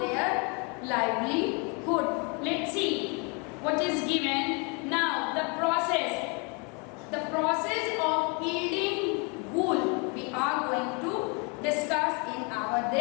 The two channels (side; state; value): right; quieter; 33.2 dB